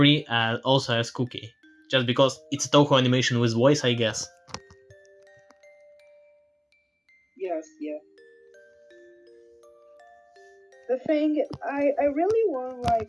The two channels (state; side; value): identical; both; correlation 1.00